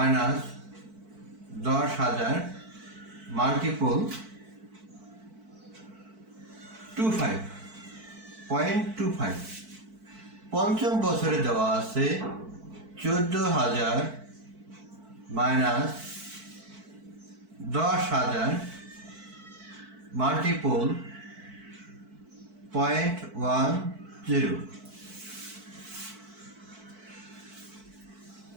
10,000 মাল্টিপল 0.25। পঞ্চম বছরে দেওয়া আছে 14,000 মাইনাস 10,000 মাল্টিপল 0.10।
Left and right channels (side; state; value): left; late; 4.5 ms